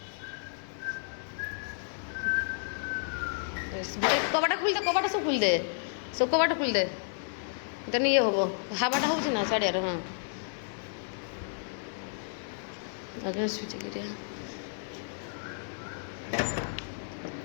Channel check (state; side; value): silent; right; digital silence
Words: कबाटा खुल दे कबाटा सब खुल दे सब कबाटा खुल दे तेन ये हम हावाटा हो साड़िया हाँ आगे स्विच गिरिया